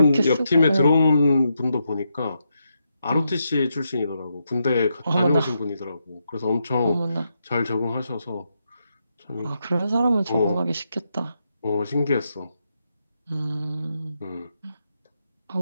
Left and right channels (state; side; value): inverted; both; correlation -0.83